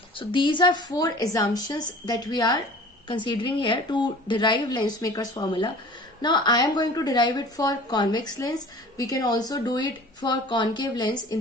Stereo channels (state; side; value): normal; both; correlation 0.44